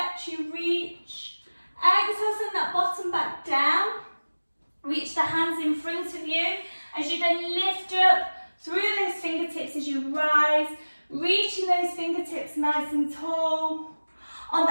you reach. Exhale, send that bottom back down. Reach the hands in front of you As you then lift up through those fingertips as you rise, reaching those fingertips nice and tall. On the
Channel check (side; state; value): both; inverted; correlation -1.00